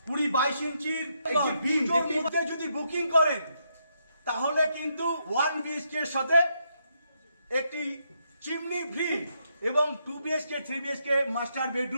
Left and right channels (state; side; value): inverted; both; correlation -0.78